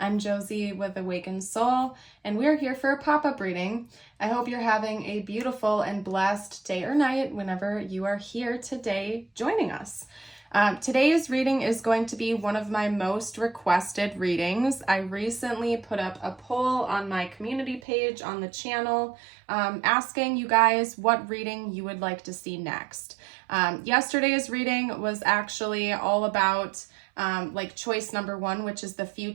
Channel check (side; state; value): left; drops out; at 17.8 s